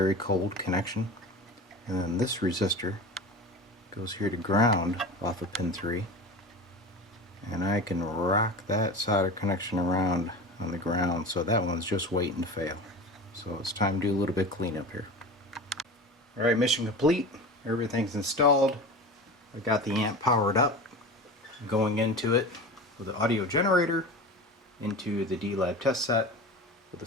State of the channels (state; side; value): normal; both; correlation 0.32